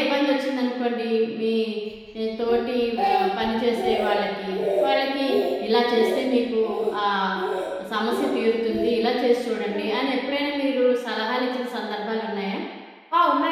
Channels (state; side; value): identical; both; correlation 1.00